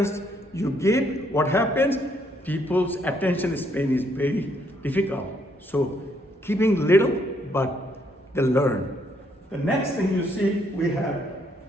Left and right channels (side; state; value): both; normal; correlation 0.71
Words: you give, what happens? People's attention span is very difficult. So keeping little, but they learn. The next thing you see, we have